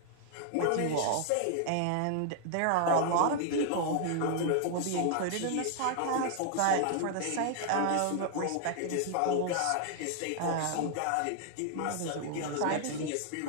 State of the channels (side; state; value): both; different; correlation 0.00